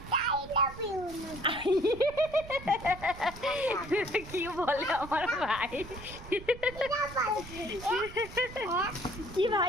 এটা কি বলে আমার ভাই? কি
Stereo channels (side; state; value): right; noise; rumble, 15 dB below the sound